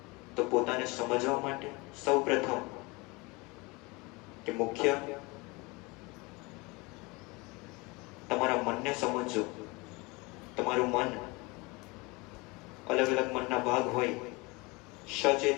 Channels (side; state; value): right; quieter; 25.6 dB